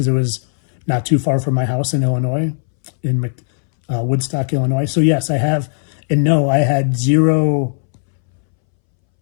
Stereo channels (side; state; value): right; silent; 66 dB below the other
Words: it was not too far from my house in Illinois, in Woodstock, Illinois. So yes, I have, and no, I had zero